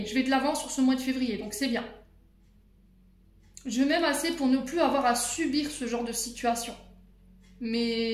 je vais de l'avant sur ce mois de février. Donc, c'est bien. Je m'aime assez pour ne plus avoir à subir ce genre de situation.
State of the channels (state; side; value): identical; both; correlation 1.00